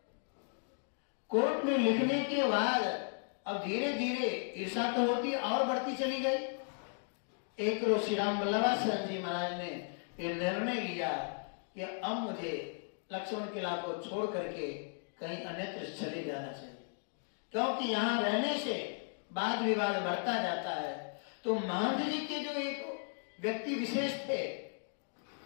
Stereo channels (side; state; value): right; silent; 54 dB below the other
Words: कोर्ट में लिखने के बाद अब धीरे धीरे ईर्षा तो होती और बढ़ती चली गई। एक रोज श्री राम वल्लभासन जी महाराज ने ये निर्णय लिया कि अब मुझे लक्ष्मण किला को छोड़ करके कहीं अन्यत्र चले जाना चाहिए, क्योंकि यहाँ रहने से वाद विवाद बढ़ता जाता है। तो महंत जी के जो एक व्यक्ति विशेष थे,